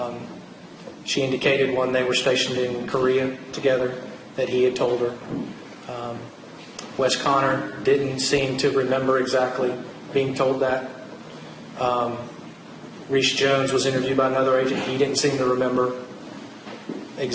She indicated when they were stationed in Korea together that he had told her. Wes Connor didn't seem to remember exactly being told that. Reese Jones was interviewed by another agent. He didn't seem to remember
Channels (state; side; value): identical; both; correlation 1.00